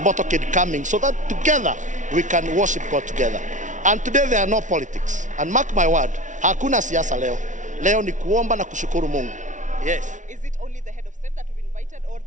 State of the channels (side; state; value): left; late; 0.37 ms